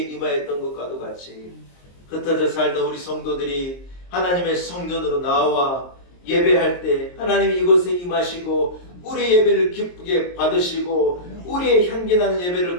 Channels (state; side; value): late; right; 23 ms